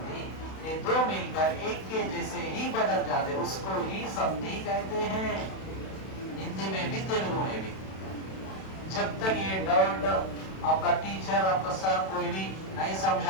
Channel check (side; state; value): right; late; 32 ms